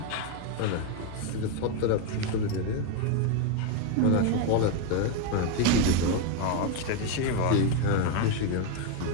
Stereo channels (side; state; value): both; different; correlation 0.02